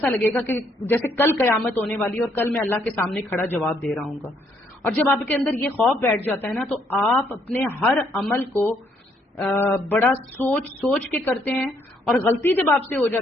لگے گا کہ جیسے کل قیامت ہونے والی ہے اور کل میں اللہ کے سامنے کھڑا جواب دے رہا ہوں گا. اور جب آپ کے اندر یہ خوف بیٹھ جاتا ہے نا تو آپ اپنے ہر عمل کو بڑا سوچ کے کرتے ہیں. اور غلطی جب آپ سے ہو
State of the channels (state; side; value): normal; both; correlation 0.70